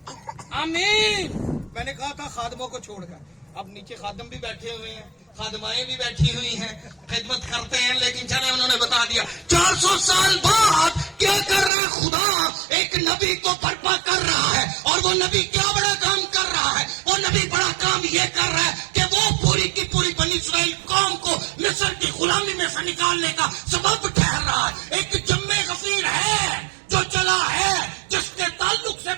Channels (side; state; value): left; drops out; at 11.7 s